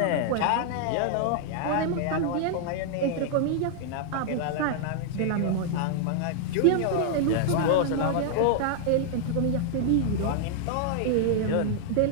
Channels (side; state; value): both; different; correlation -0.01